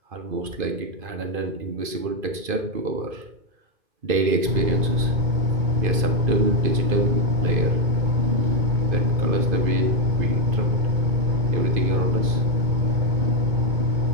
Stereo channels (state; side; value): late; left; 2.5 ms